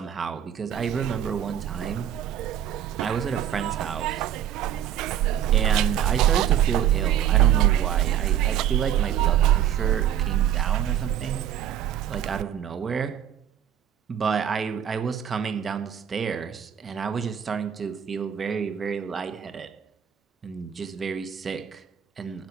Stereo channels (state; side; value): quieter; left; 9.9 dB